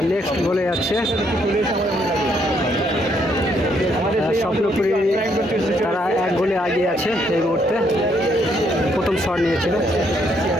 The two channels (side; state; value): both; normal; correlation 0.72